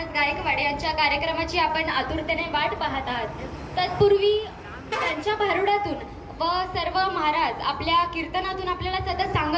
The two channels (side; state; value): both; identical; correlation 1.00